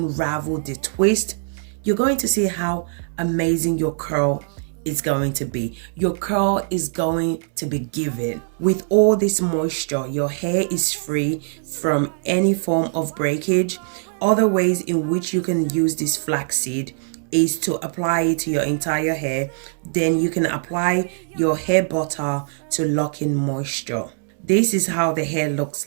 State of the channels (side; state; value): left; silent; 64 dB below the other